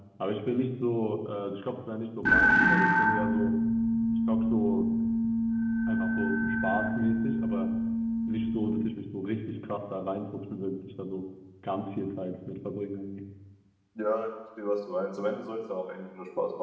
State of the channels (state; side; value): identical; both; correlation 1.00